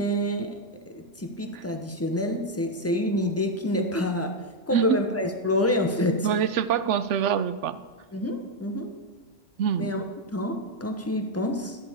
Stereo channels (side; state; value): both; normal; correlation 0.02